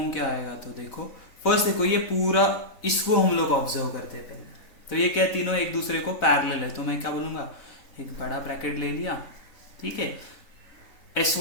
क्या आएगा, तो देखो फर्स्ट देखो, ये पूरा इसको हम लोग ऑब्जर्व करते हैं पहले। तो ये क्या, तीनों एक दूसरे को पैरेलल है, तो मैं क्या बोलूंगा, एक बड़ा ब्रैकेट ले लिया, ठीक है।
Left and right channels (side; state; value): right; late; 4.3 ms